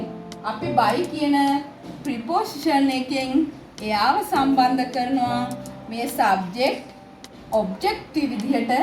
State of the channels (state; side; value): identical; both; correlation 1.00